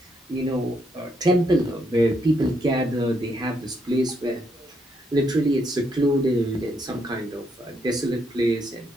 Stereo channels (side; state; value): both; normal; correlation 0.76